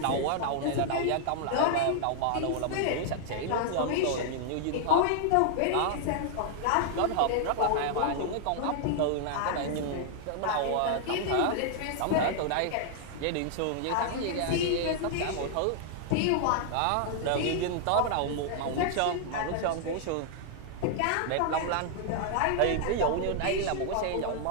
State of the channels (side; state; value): both; different; correlation -0.01